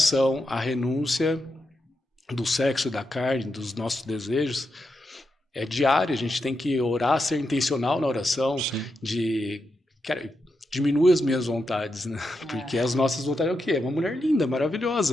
a renúncia do sexo, da carne, dos nossos desejos, é diária. A gente tem que orar, ser intencional na oração, diminuir as minhas vontades, né? Porque as nossas vontades é o quê? É uma mulher linda,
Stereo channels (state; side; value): normal; both; correlation 0.85